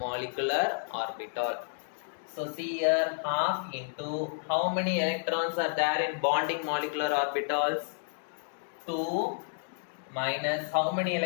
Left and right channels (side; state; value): right; silent; digital silence